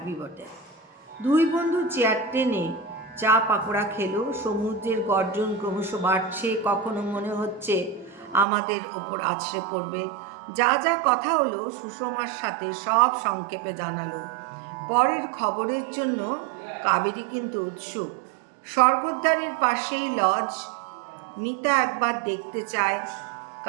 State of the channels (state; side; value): drops out; left; at 8.5 s